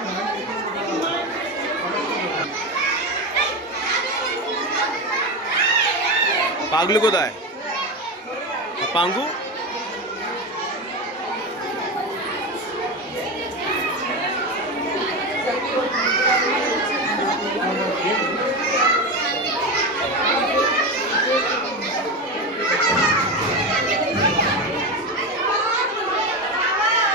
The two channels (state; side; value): normal; both; correlation 0.19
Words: পাগলু কোথায়? পাঙ্গু